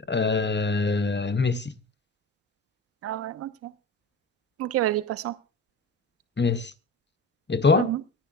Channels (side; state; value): both; normal; correlation 0.33